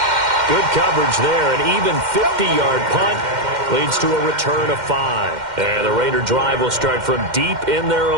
Good coverage there. An even 50-yard punt leads to a return of 5. And the Raider drive will start from deep in their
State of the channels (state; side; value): late; left; 2.1 ms